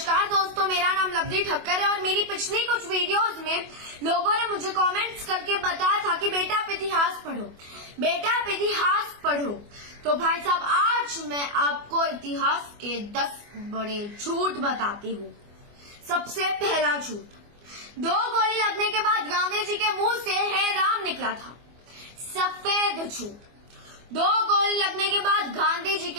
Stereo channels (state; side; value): late; left; 24 ms